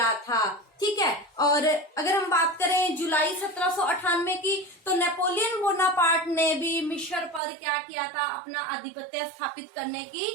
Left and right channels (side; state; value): left; drops out; at 7.4 s